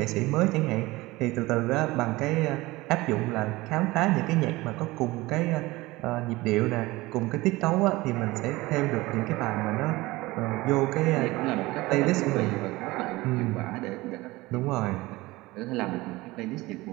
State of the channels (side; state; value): left; quieter; 20.2 dB